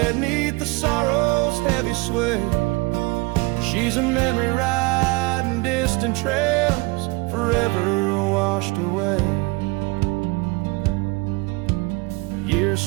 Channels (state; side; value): quieter; left; 25.1 dB